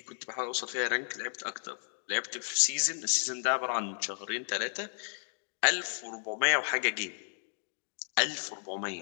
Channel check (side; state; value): right; silent; digital silence